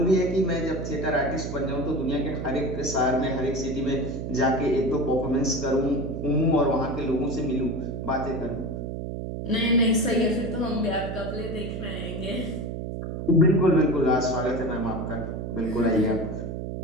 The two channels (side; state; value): right; noise; hum, 5 dB below the sound